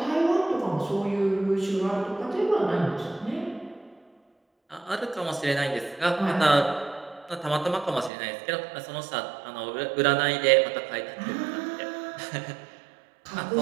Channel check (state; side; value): drops out; left; at 8.1 s